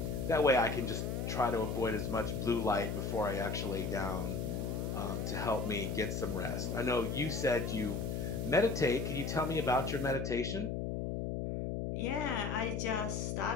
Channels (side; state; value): left; noise; hum, 2 dB below the sound